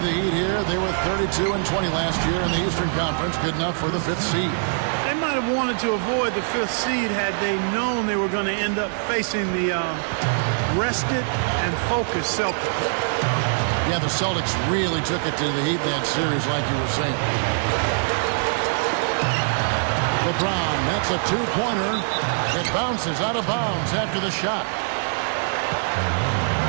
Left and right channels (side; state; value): left; silent; digital silence